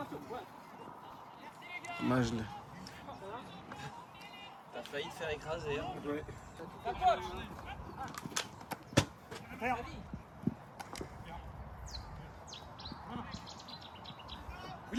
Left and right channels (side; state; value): both; identical; correlation 1.00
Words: Majle. T'as failli te faire écraser. Hein. Ouais.